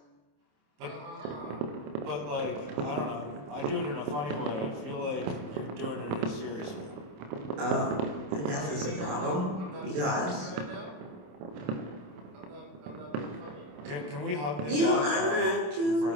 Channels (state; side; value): late; left; 27 ms